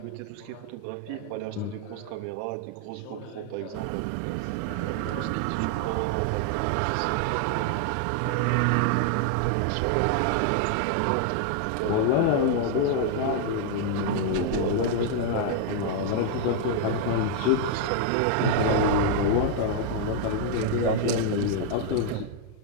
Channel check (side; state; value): both; different; correlation -0.01